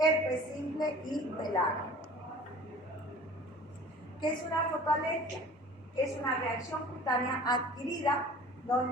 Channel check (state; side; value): normal; both; correlation 0.44